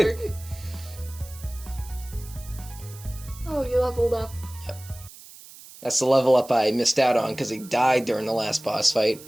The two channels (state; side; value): noise; right; hiss, 18 dB below the sound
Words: Oh, you leveled up. Yep. That's the level up I missed out on because he died during the last boss fight